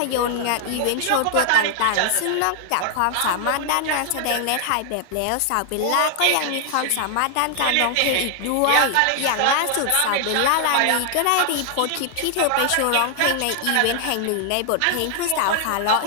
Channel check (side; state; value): both; different; correlation 0.00